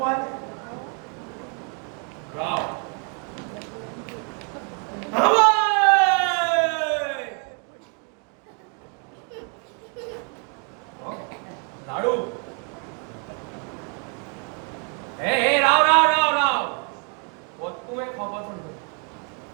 राव लाडू हे राव राव राव राव तुम्ही खबर सांगतो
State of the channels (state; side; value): quieter; left; 35.4 dB